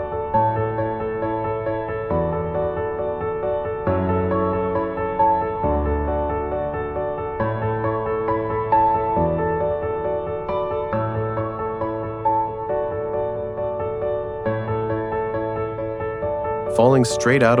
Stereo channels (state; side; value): identical; both; correlation 1.00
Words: Falling straight out